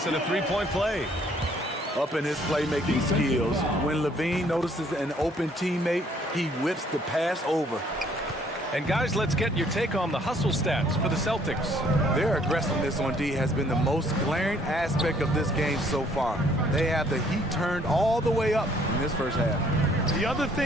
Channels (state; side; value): normal; both; correlation 0.62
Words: at a 3-point play. Up in his playmaking skills, when Levine notices an open teammate, he whips the pass over. And guys, let's get your take on the hustle stats for the Celtics. Their aggressiveness on D has been the most glaring aspect of this game so far. They have the heat turned all the way up in this first half. The other